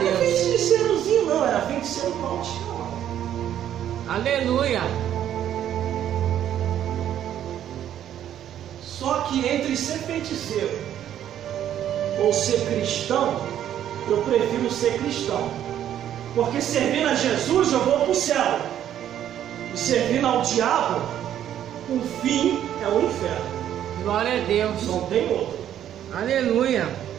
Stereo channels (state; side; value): quieter; left; 10.7 dB